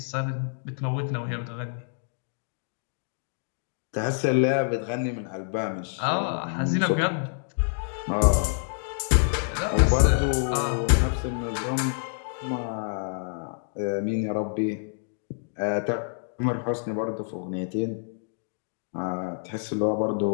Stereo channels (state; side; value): silent; right; digital silence